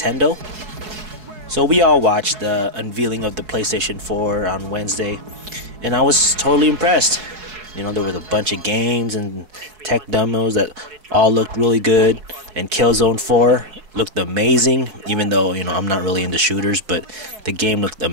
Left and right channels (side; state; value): left; late; 4.7 ms